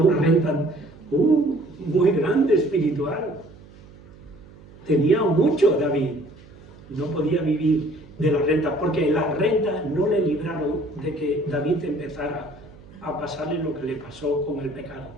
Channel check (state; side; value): noise; right; hum, 22 dB below the sound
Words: renta muy grande espiritual. Tenía mucho David, no podía vivir de la renta, porque las rentas no le libraron de que David empezara a pasarle lo que le pasó con el pecado.